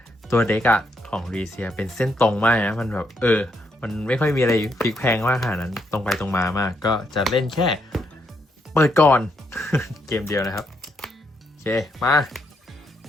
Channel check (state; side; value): normal; both; correlation 0.77